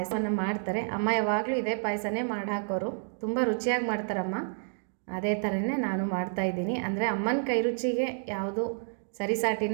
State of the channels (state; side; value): silent; left; digital silence